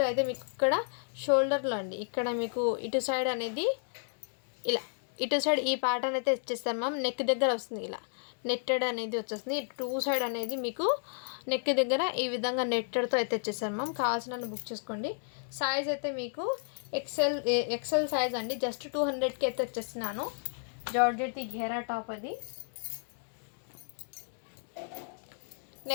అయితే మీకు ఇక్కడ షోల్డర్లో అండి ఇక్కడ మీకు ఇటు సైడ్ అనేది ఇలా ఇటు సైడ్ ఈ ప్యాటర్న్ అయితే ఇచ్చేస్తారు మ్యామ్. నెక్ దగ్గర వస్తుంది ఇలా నెట్టెడ్ అనేది వచ్చేస్తుంది. టూ సైడ్ అనేది మీకు నెక్ దగ్గర ఈ విధంగా నెట్టెడ్తో అయితే వచ్చేసారు మ్యామ్. కావాల్సిన బుక్ చేసుకోండి. సైజ్ అయితే మీకు ఎక్సెల్ సైజ్ అండి. జస్ట్ 200కి అయితే వచ్చేస్తున్నాను. జార్జెట్ ఘేరా టాప్ అది.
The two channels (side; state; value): right; silent; digital silence